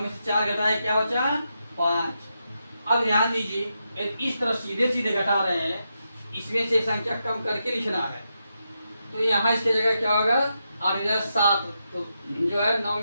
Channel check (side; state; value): both; inverted; correlation -0.85